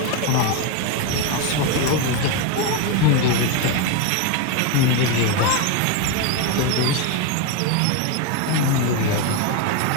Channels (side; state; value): both; different; correlation 0.02